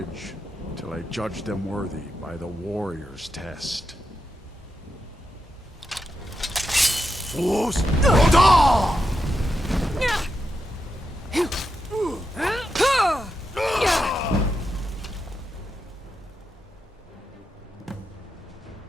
till I judge them worthy by the warrior's test. Fools!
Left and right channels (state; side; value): normal; both; correlation 0.86